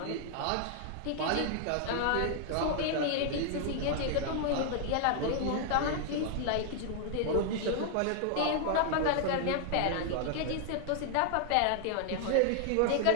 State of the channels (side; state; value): both; different; correlation 0.00